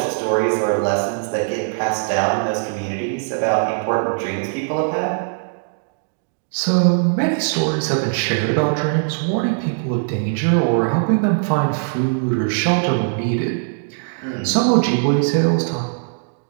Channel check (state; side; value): silent; left; digital silence